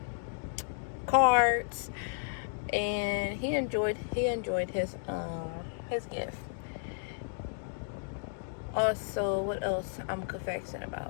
cards, and he enjoyed his gift. Also, what else I'm confessing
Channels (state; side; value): silent; right; digital silence